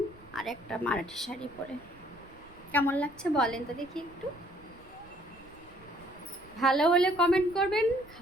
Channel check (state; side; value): noise; right; rumble, 24 dB below the sound